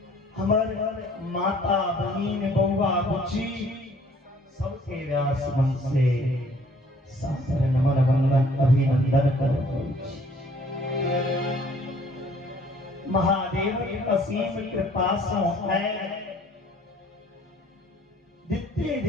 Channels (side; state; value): both; normal; correlation 0.57